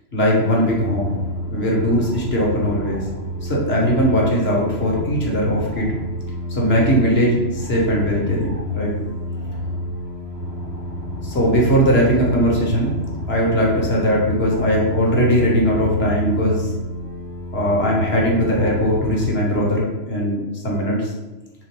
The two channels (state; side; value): late; left; 3.0 ms